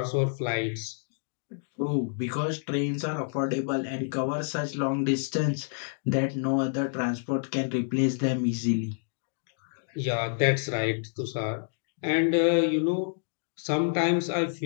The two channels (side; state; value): right; silent; digital silence